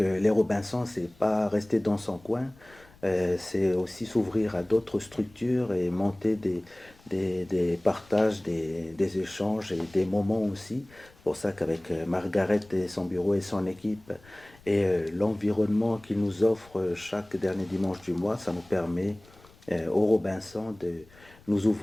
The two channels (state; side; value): noise; left; rumble, 26 dB below the sound